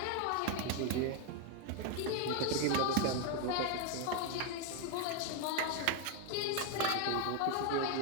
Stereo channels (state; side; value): different; both; correlation 0.01